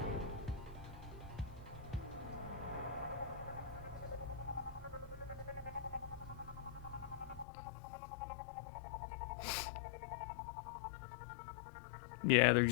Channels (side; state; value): right; drops out; at 7.5 s